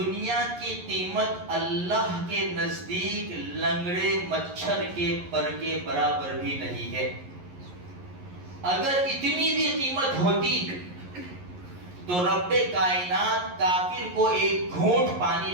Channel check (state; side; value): late; left; 11 ms